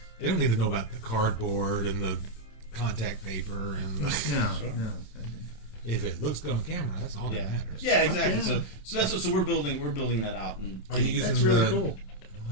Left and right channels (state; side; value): late; right; 27 ms